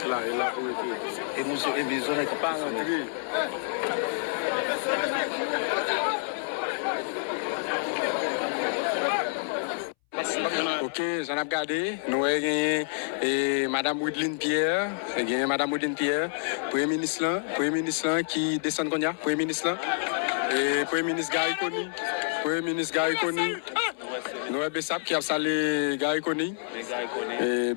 Ok, j'en ai regardé. Nous avons gagné Madame Woodline Pierre. Premier ministre là, qui descend de Konya. Premier ministre là. Et Premier ministre Gary Koni. Nous avons Bessap qui a salué Gary Koni. Et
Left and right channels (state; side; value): silent; right; 59 dB below the other